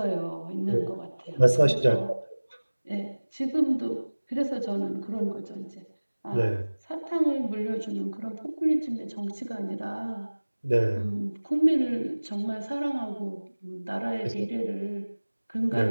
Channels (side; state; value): both; inverted; correlation -1.00